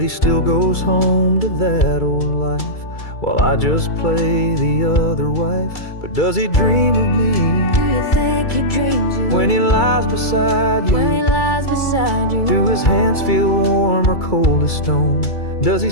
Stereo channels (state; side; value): late; right; 2.3 ms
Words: he still goes home to that old life, while I just play the other wife. But does he dream of me? Do you think he dreams you? When he lies beside you? When he lies beside you? Do his hands feel warm or cold as stone? Does he